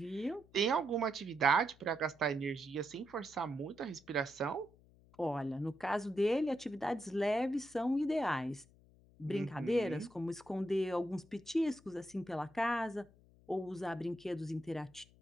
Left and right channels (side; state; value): left; noise; hum, 27 dB below the sound